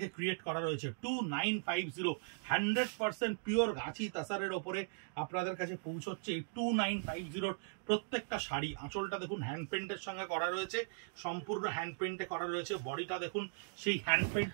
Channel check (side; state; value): left; silent; digital silence